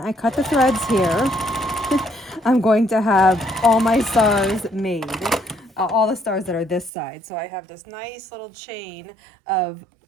cut the threads here, I'm going to have all my stars made. All the stars that are this side. So I have this nice little chain of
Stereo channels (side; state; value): left; drops out; at 6.9 s